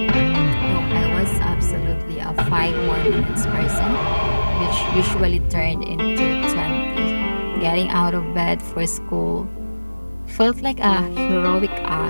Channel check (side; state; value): both; inverted; correlation -1.00